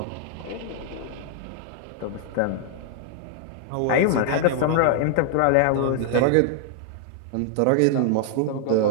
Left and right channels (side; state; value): both; different; correlation 0.00